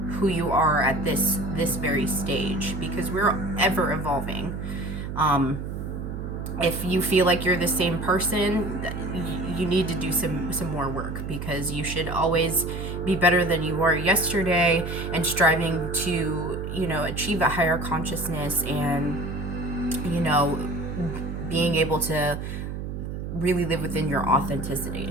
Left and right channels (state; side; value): noise; right; hum, 6 dB below the sound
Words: who you are at this very stage, because we're ever evolving. If you feel like you're the same person, you need to do some more work, because you should always be better than you were yesterday, and striving to, you know, achieve a higher consciousness, and, you know, being able to really live within your